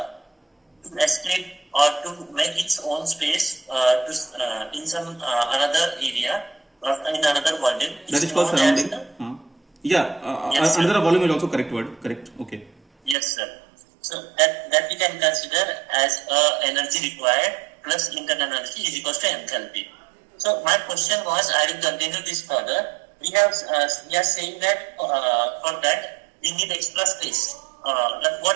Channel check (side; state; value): left; drops out; at 13.2 s